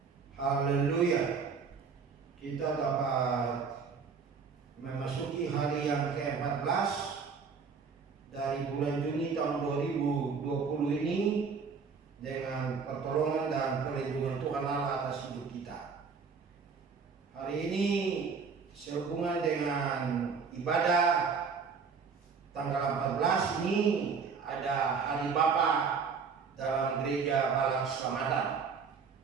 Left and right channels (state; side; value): quieter; left; 5.6 dB